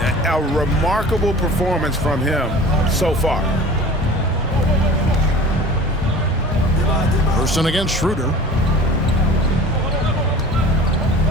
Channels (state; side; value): normal; both; correlation 0.42